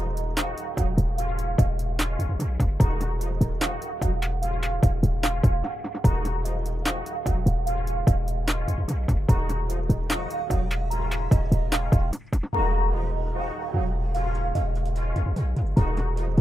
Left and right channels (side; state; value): both; normal; correlation 0.91